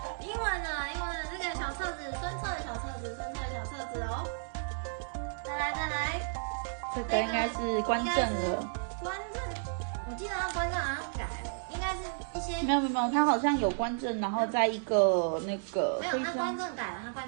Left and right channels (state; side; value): silent; left; digital silence